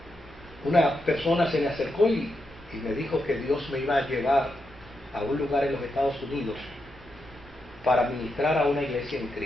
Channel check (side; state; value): both; normal; correlation 0.85